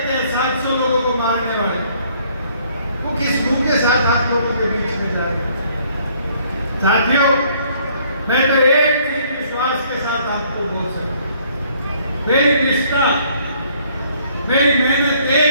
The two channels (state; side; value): inverted; both; correlation -0.63